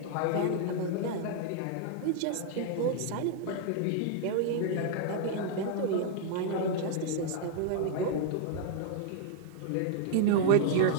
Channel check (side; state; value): both; different; correlation -0.01